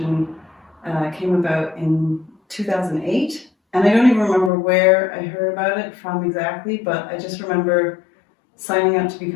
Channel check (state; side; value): drops out; right; at 4.5 s